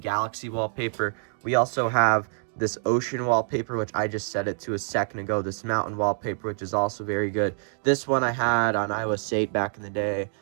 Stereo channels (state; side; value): silent; left; digital silence